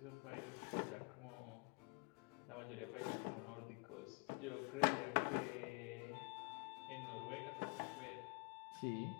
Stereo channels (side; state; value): right; quieter; 34.1 dB